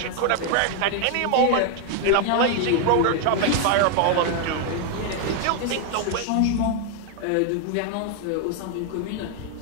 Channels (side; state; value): both; different; correlation 0.00